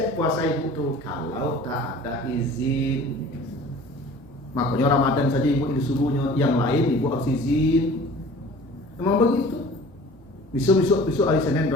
puasa ibu tuh kalau tak ada izin. Makanya Ramadan saja ibu disuruhnya, yang lain ibu harus izin. Memang begitu. Besok hari Senin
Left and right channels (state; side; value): normal; both; correlation 0.45